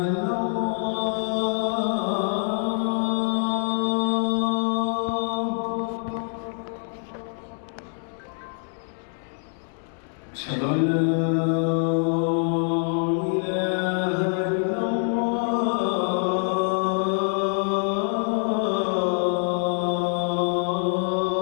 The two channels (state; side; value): silent; right; 62 dB below the other